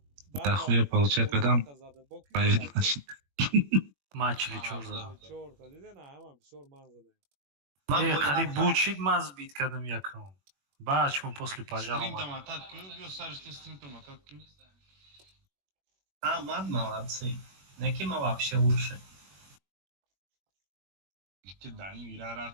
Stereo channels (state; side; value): late; left; 21 ms